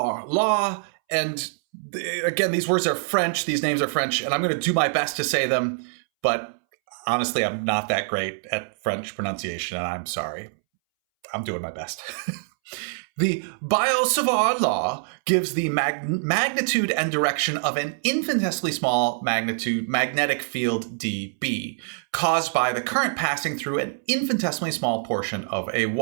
law, and again, these words are French, these names are French, and I'm going to do my best to say them, but honestly, I'm not that great at French pronunciation, and I'm sorry. I'm doing my best. The Biot-Savart law gives the magnitude and direction of an infinitesimally small magnetic field dB, caused by the current passing through an infinitesimally small portion of a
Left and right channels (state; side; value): silent; left; 62 dB below the other